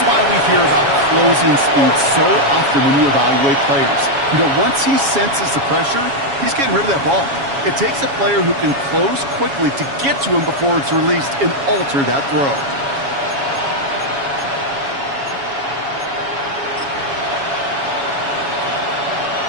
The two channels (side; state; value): left; late; 7.2 ms